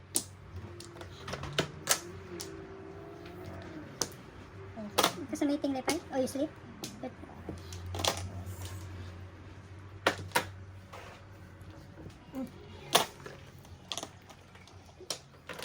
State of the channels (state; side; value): identical; both; correlation 1.00